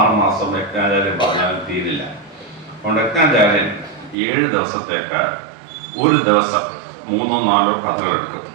മാസം യജ്ഞാചാര്യൻ പറഞ്ഞാലും തീരില്ല. അതുകൊണ്ട് യജ്ഞാചാര്യൻ 7 ദിവസത്തേക്ക് ഒരു ദിവസം 3-4 കഥകൾ എടുക്കും.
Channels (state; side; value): drops out; left; at 4.2 s